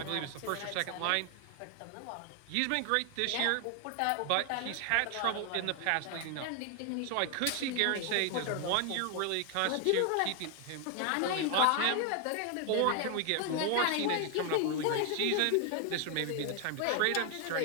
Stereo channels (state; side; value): different; both; correlation 0.00